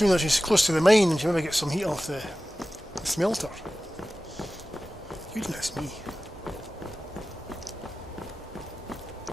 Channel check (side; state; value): both; normal; correlation 0.95